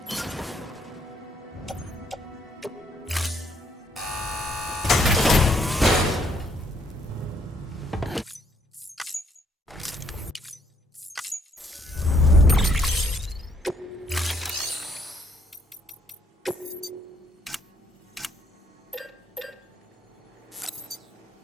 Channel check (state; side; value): normal; both; correlation 0.69